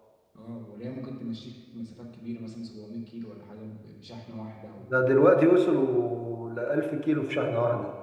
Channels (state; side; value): identical; both; correlation 1.00